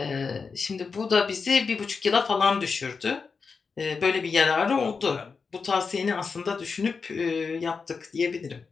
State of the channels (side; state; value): right; quieter; 5.1 dB